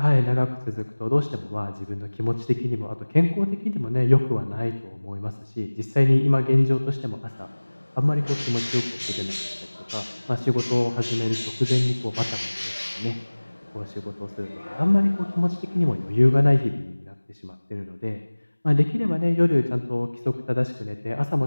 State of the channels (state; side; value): inverted; both; correlation -1.00